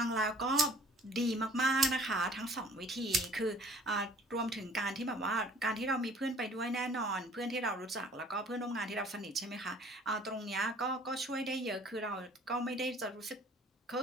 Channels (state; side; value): normal; both; correlation 0.53